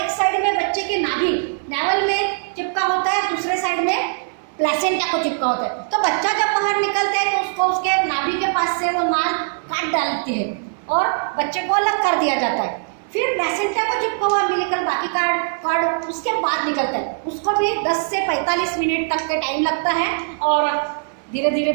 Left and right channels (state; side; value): silent; left; 59 dB below the other